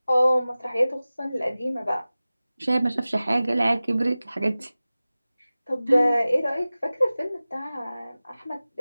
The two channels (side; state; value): both; inverted; correlation -0.97